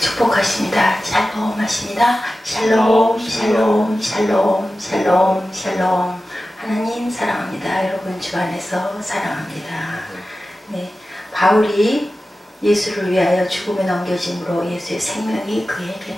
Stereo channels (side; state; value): both; normal; correlation 0.94